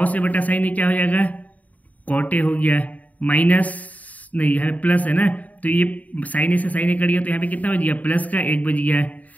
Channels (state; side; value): late; right; 0.073 ms